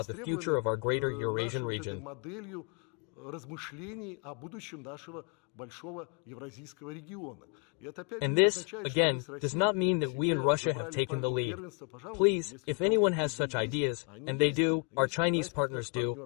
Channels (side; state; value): right; quieter; 32.4 dB